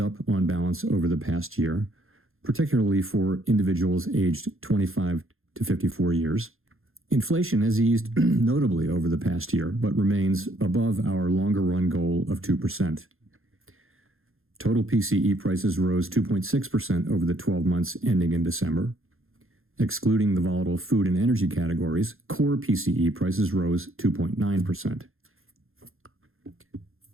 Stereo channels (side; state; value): left; late; 0.61 ms